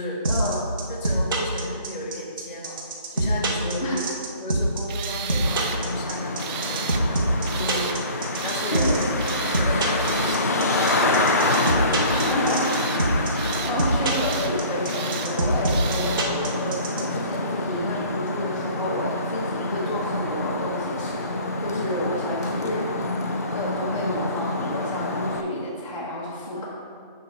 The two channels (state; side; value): inverted; both; correlation -0.46